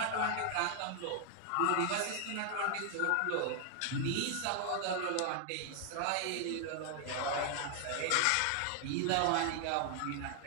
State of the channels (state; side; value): different; both; correlation 0.00